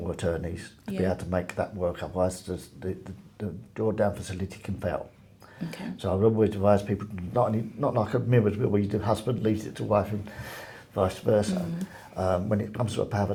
attorneys to be able to make that work. Otherwise, the drawdown facility can fail. Okay. So I would always advise people not like a mirror's will where the husband leaves it to wife and vice versa. When it comes to a power of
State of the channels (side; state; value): both; identical; correlation 1.00